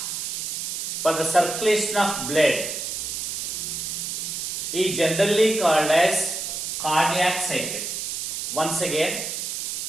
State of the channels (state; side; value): noise; right; hiss, 3 dB below the sound